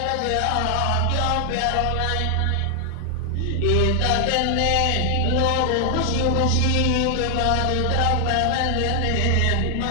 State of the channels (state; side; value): different; both; correlation 0.00